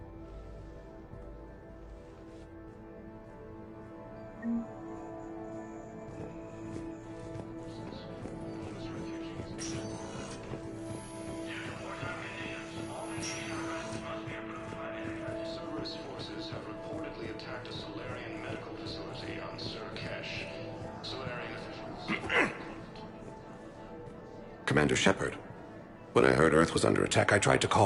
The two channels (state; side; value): identical; both; correlation 1.00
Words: Cerberus forces have reportedly attacked a Solarian medical facility on Surkesh. Solarian officials... Commander Shepard. When I heard Earth was under attack, I tried to